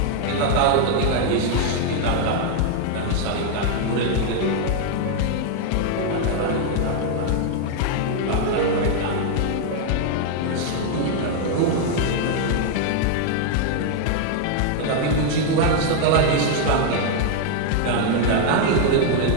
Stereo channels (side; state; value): both; different; correlation 0.00